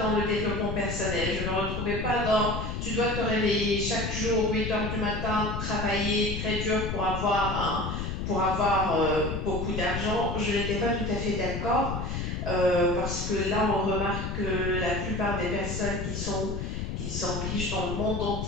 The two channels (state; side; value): noise; left; rumble, 4 dB below the sound